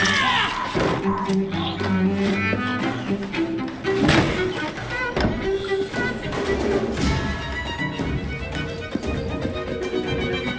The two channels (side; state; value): both; identical; correlation 1.00